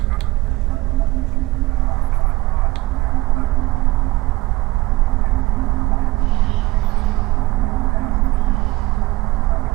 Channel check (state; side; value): quieter; left; 20.1 dB